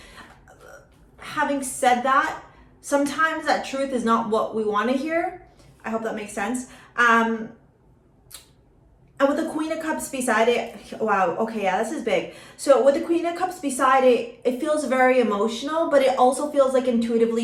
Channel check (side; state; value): both; identical; correlation 1.00